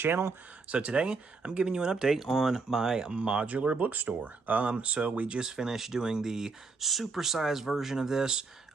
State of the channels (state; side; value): quieter; left; 4.3 dB